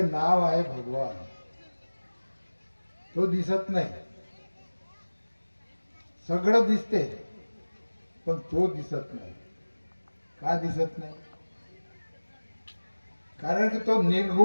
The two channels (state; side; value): inverted; both; correlation -1.00